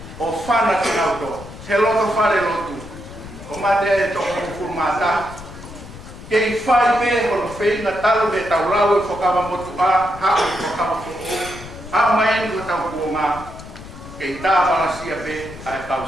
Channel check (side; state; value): left; noise; rumble, 15 dB below the sound